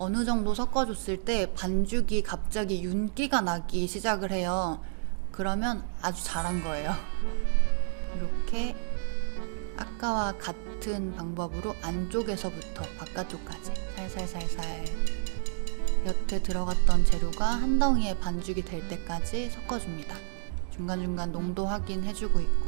정도 섞어줬을 때 반죽이 갑자기 윤기가 나기 시작을 해요. 그러면 아주 잘한 거예요. 이렇게 아까와 같은 방법으로 안쪽에서부터 바깥쪽까지 살살살살 여태 들어갔던 재료가 한 덩이의 반죽이 될 때까지 섞어줍니다. 중간중간 농도 확인해주고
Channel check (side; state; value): left; silent; digital silence